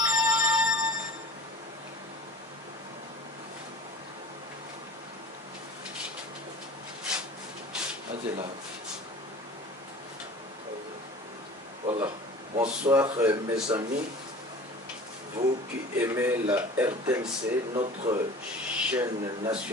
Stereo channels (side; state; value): both; normal; correlation 0.42